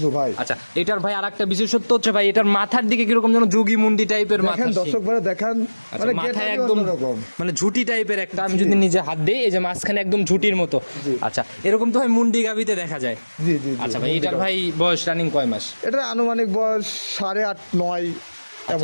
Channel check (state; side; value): inverted; both; correlation -1.00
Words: ভাই। আচ্ছা, এটার ভাই আরেকটা বিশেষত্ব হচ্ছে ভাই, এটার মাথার দিকে কিরকম যেন যোগী মুন্ডি টাইপের মাথা। দেখেন দর্শক ভাই, দেখেন মানে মাথায় একদম মানে ঝুটি টাইপের একটা। আমি যদি নিজে হাত দিই, এই যে মাঝখানে একদম ঝুটির মতো। আচ্ছা, এরকম তো ভাই মুন্ডি গাভিতে দেখা যায়। জি জি। আচ্ছা ভাই, এটার ভাই বয়স রানিং কয় মাস? এটা আনুমানিক বয়স 8.5-9